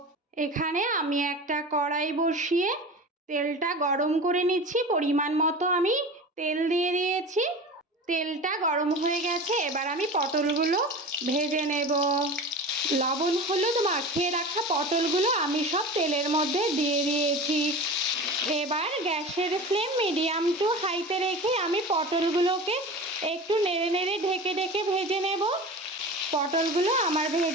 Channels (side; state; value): both; normal; correlation 0.33